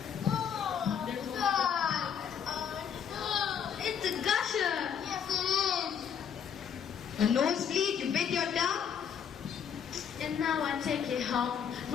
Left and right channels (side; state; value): right; quieter; 7.9 dB